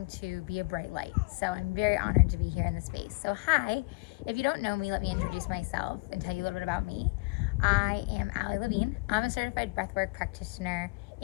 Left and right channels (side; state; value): right; quieter; 27.4 dB